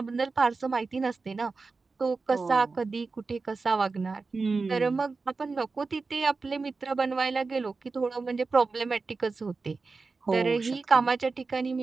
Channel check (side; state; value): left; quieter; 4.1 dB